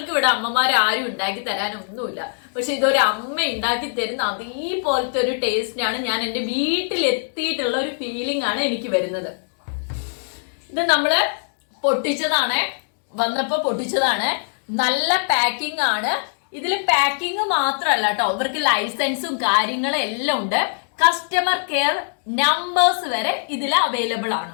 ഇവിടെ അമ്മമാർ ആരും ഉണ്ടാക്കി തരാനൊന്നുമില്ല, പക്ഷെ ഇതൊരു അമ്മ ഉണ്ടാക്കി തരുന്ന അതേപോലത്തെ ഒരു ടേസ്റ്റിനാണ് ഞാൻ എന്റെ വീട്ടിലെത്തിയിട്ടുള്ള ഒരു ഫീലിംഗ് ആണ് എനിക്ക് വരുന്നത്. ഇത് നമ്മള് പൊട്ടിച്ചതാണ്, വന്നപ്പോ പൊട്ടിച്ചതാണ്. നല്ല പാക്കിംഗ് ആണ്. ഇതിൽ പാക്കിംഗ് മാത്രമല്ല കേട്ടോ, ഇവർക്ക് ലൈസൻസും കാര്യങ്ങളും എല്ലാം ഉണ്ട്. കസ്റ്റമർ കെയർ നമ്പേഴ്സ് വരെ ഇതിൽ അവൈലബിൾ ആണ്.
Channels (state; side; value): silent; right; digital silence